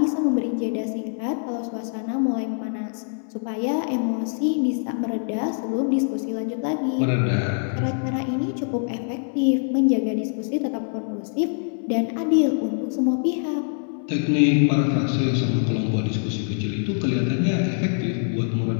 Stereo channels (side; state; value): right; silent; digital silence